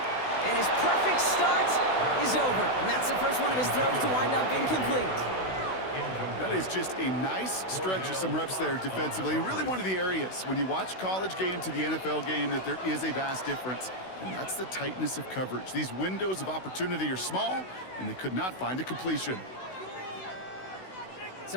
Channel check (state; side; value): late; right; 16 ms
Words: And his perfect start is over. And that's the first one of his throws to wind up incomplete. That is just a nice stretch of some reps there defensively. And really one of the areas, when you watch college game to the NFL game, that there is a vast difference. And that's the tightness of coverage. These windows of opportunity are small, and they could not find a completion.